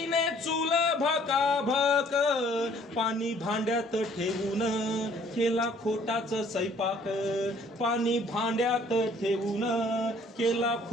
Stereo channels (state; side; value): normal; both; correlation 0.58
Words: चूल भकाभक. पाणी भांड्यात ठेवून केला खोटाच स्वयंपाक, पाणी भांड्यात ठेवून केला